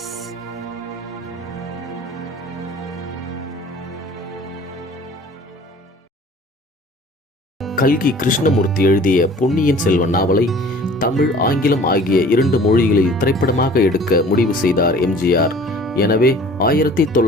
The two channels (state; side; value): normal; both; correlation 0.48